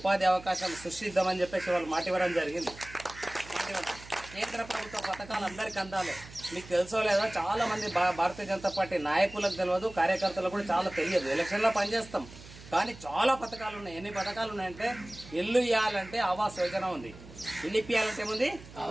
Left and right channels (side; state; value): right; noise; hum, 18 dB below the sound